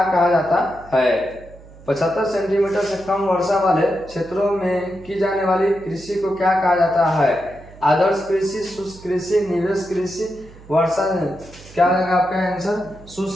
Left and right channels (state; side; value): noise; right; hum, 21 dB below the sound